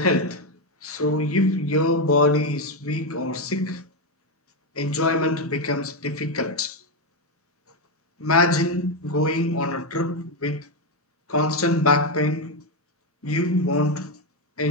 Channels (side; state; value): both; normal; correlation 0.07